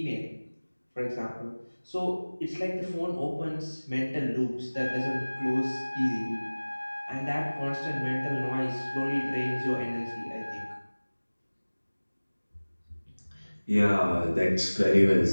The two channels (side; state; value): both; inverted; correlation -1.00